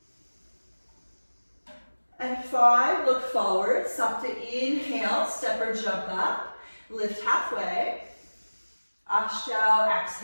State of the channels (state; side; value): inverted; both; correlation -1.00